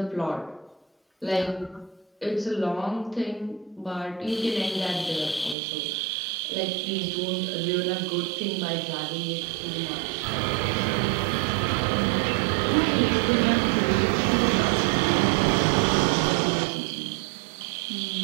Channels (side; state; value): left; drops out; at 5.6 s